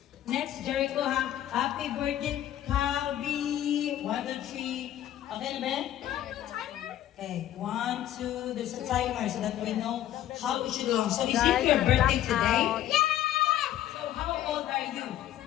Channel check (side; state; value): right; quieter; 12.3 dB